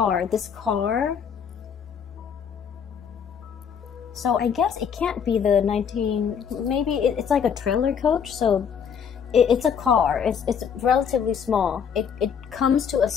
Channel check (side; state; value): right; quieter; 7.3 dB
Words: so I guess it can't be the maybe it's like a trailer coach, so it's a car, it's relatively small. It comes to a